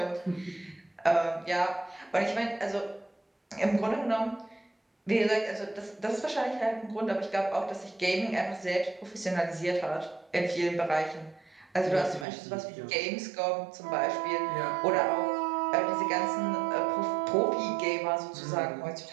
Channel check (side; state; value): left; drops out; at 12.2 s